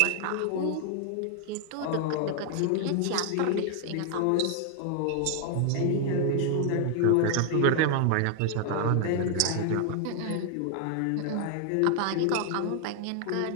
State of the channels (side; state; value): both; different; correlation 0.00